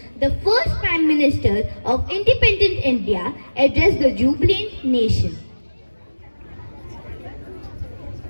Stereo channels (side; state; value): both; inverted; correlation -1.00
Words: the first Prime Minister of independent India, addressed the jubilant nation.